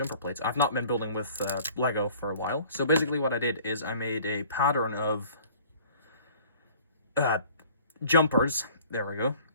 plates. I've not been building with Lego for a while. So basically what I did is I made a pattern of jumpers. There we go.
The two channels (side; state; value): both; inverted; correlation -0.51